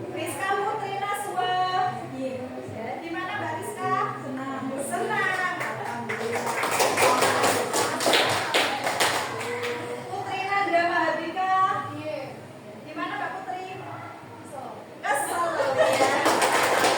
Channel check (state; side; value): identical; both; correlation 1.00